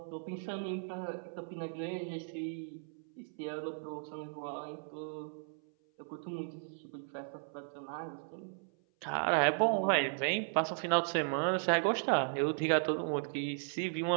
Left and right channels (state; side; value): silent; left; 54 dB below the other